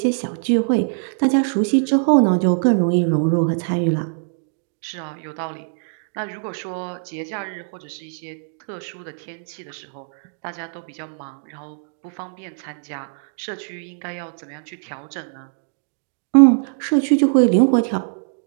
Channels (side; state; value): left; silent; digital silence